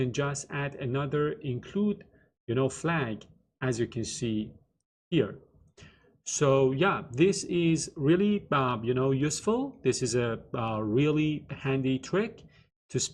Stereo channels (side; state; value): both; identical; correlation 1.00